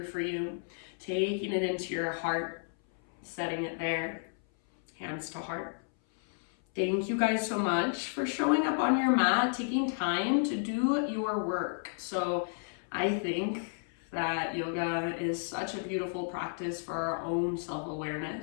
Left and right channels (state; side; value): silent; right; 56 dB below the other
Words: for you, taking it into your heart. Setting it there, hands to heart. Thank you guys so much for showing up on your mat, taking time to do your work. So I think that yoga is such a beautiful practice for our own